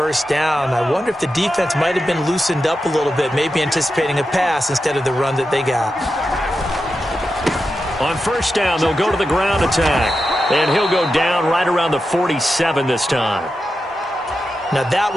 down. I wonder if the defense might have been loosened up a little bit, maybe anticipating a pass instead of the run that they got. On first down, they'll go to the ground attack. And he'll go down right around the 47 this time. Now, that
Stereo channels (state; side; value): normal; both; correlation 0.89